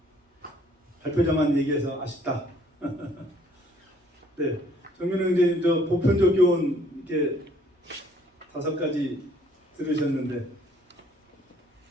발표자만 얘기해서 아쉽다. 네, 정면은 이제 보편적 교훈 이렇게 5가지 들으셨는데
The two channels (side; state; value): both; normal; correlation 0.61